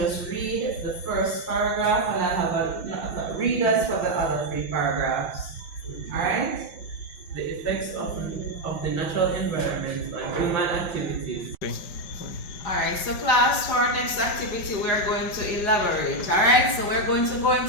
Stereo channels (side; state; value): right; late; 5.2 ms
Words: read the first paragraph and I'll have readers for the other 3 paragraphs. Alright? The effects of the natural environment on human activities. Alright, so class, for our next activity we are going to elaborate. Alright, so we're going to go